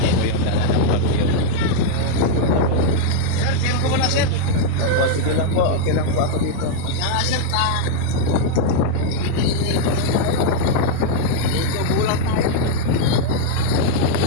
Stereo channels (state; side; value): different; both; correlation 0.00